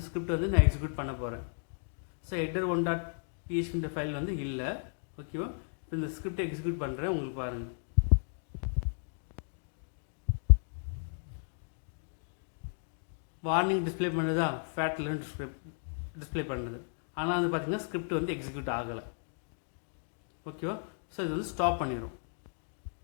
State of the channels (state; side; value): silent; right; digital silence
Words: ஸ்கிரிப்ட் வந்து நான் எக்ஸிக்யூட் பண்ண போகிறேன். ஸோ header1.php ஃபைல் வந்து இல்லை. ஓகேவா? இப்போ இந்த ஸ்கிரிப்டை எக்ஸிக்யூட் பண்ணுறேன், உங்களுக்கு பாருங்கள். வார்னிங் டிஸ்பிளே பண்ணுறதா, ஃபேட்லன்னு டிஸ்பிளே பண்ணுறது, ஆனால் வந்து பார்த்தீங்கன்னா ஸ்கிரிப்ட் வந்து எக்ஸிக்யூட் ஆகலை. ஓகேவா? ஸோ இது வந்து ஸ்டாப் பண்ணிடும்.